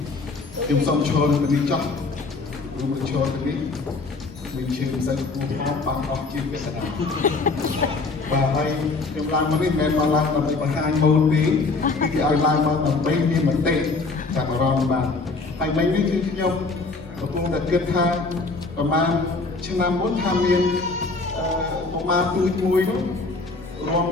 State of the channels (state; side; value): quieter; right; 3.8 dB